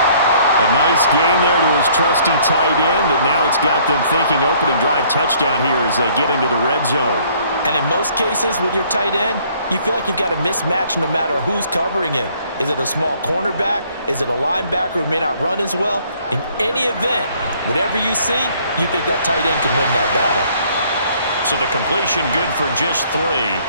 A nice gain there to his trusty tight end, and now it's got them thinking opening drive touchdown here as they get into the red zone. And in most cases with your tight end, you feel like you've got a mismatch no matter who's covering him. Is it a small cornerback? Is it a linebacker who may not run as well? In any event, whatever you see, you think that tight end can win that battle. So the completion good for just 3.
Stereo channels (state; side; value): inverted; both; correlation -0.61